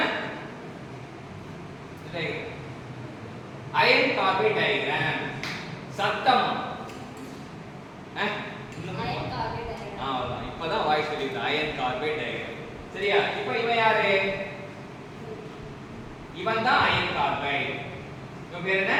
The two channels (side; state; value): both; identical; correlation 1.00